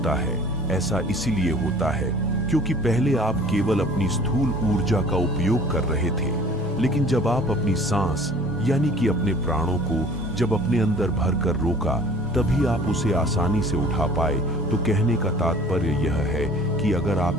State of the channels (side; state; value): both; normal; correlation 0.48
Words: है? ऐसा इसीलिए होता है क्योंकि पहले आप केवल अपनी स्थूल ऊर्जा का उपयोग कर रहे थे, लेकिन जब आप अपनी सांस यानी कि अपने प्राणों को जब अपने अंदर भरकर रोका, तभी आप उसे आसानी से उठा पाए। तो कहने का तात्पर्य यह है कि अगर